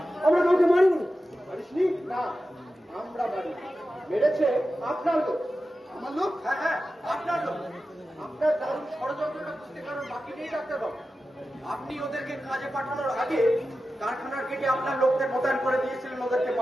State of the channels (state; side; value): normal; both; correlation 0.93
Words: আমরা কাউকে মারিনি। মারিসনি? না, আমরা মারি। মেরেছে আপনার লোক। আমার লোক? হ্যাঁ হ্যাঁ, আপনার লোক। আপনার দারুণ ষড়যন্ত্রটা বুঝতে কারণ বাকি নেই ডাক্তারবাবু। আপনি ওদেরকে কাজে পাঠানোর আগে কারখানার গেটে আপনার লোকদের মোতায়েন করে দিয়েছিলেন ওদেরকে